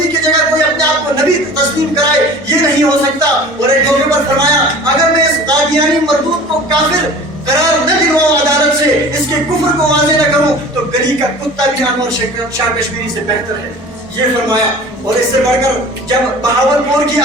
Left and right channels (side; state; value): both; normal; correlation 0.42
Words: کی جگہ کوئی اپنے آپ کو نبی تسلیم کرائے، یہ نہیں ہو سکتا۔ اور ایک موقع پر فرمایا اگر میں اس قادیانی مردود کو کافر قرار نہ دلواؤں عدالت سے، اس کے کفر کو واضح نہ کروں تو گلی کا کتا بھی انور شاہ کشمیری سے بہتر ہے، یہ فرمایا۔ اور اس سے بڑھ کر جب بہاولپور کی